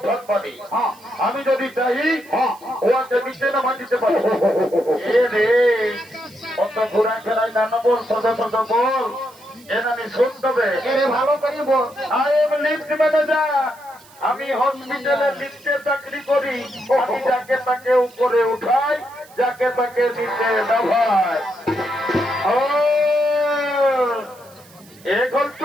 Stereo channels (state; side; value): noise; right; hiss, 25 dB below the sound